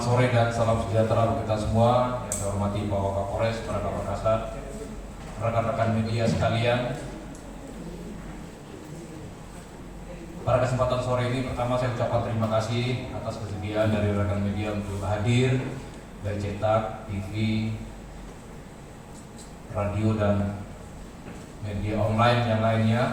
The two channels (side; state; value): both; identical; correlation 1.00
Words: sore dan salam sejahtera untuk kita semua. Yang saya hormati Pak Wakapolres, para Kapolres, rekan-rekan media sekalian. Pada kesempatan sore ini, pertama saya ucapkan terima kasih atas kesediaan dari rekan media untuk hadir dari cetak, TV, radio dan media online yang